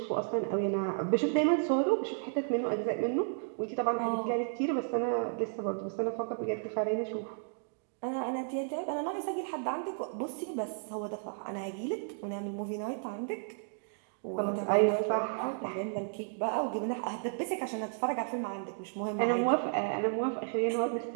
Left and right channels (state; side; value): silent; left; digital silence